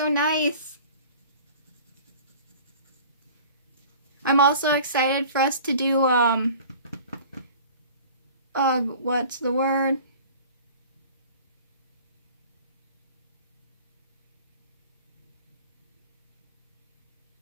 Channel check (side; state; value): both; inverted; correlation -0.44